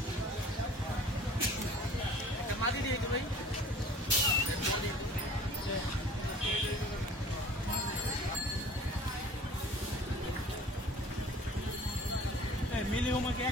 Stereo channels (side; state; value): both; normal; correlation 0.47